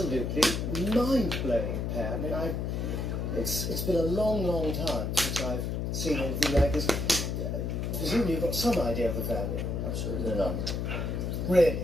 mind-blowing pair. I mean, it's been a long, long time since I've seen anything like this. Presumably you've got some idea of the value. Absolutely none. Really?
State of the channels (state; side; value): noise; left; hum, 1 dB below the sound